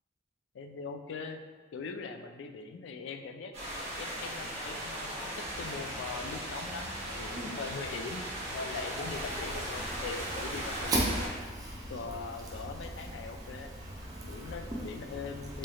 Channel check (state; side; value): normal; both; correlation 0.19